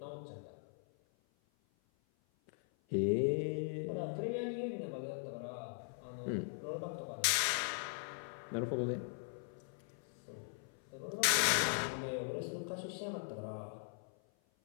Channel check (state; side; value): silent; right; 51 dB below the other